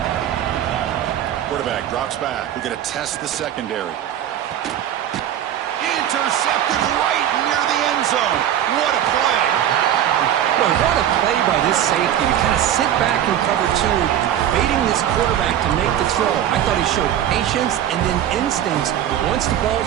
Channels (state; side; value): quieter; left; 10.8 dB